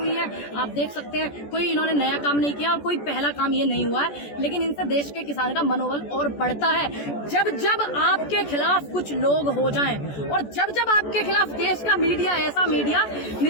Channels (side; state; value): right; late; 14 ms